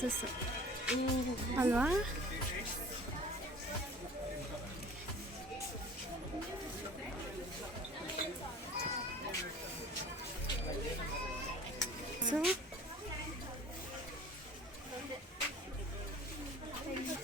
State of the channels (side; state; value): both; normal; correlation 0.45